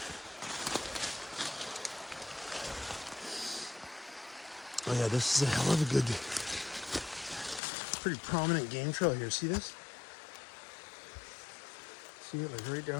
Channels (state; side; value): drops out; right; at 7.6 s